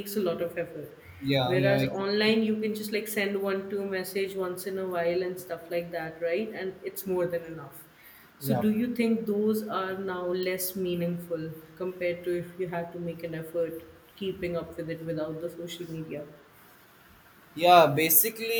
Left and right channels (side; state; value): both; identical; correlation 1.00